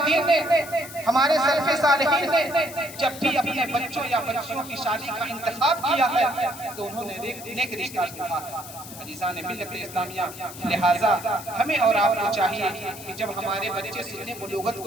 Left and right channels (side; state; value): left; noise; hiss, 14 dB below the sound